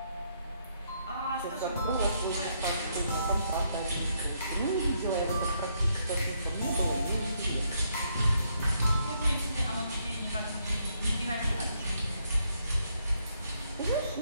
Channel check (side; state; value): both; inverted; correlation -0.75